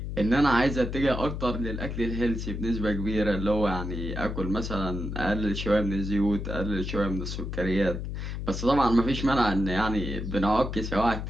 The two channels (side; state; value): left; noise; hum, 5 dB below the sound